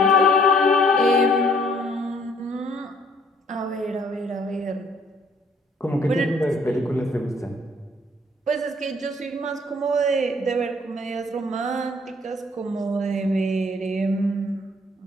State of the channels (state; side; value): normal; both; correlation 0.61